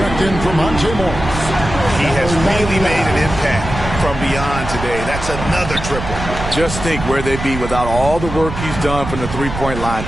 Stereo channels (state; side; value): noise; right; rumble, 7 dB below the sound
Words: in for Monte Morris. He has really made an impact from beyond today. That's another triple. Just think where they'd be without all the work he's done from the three-point line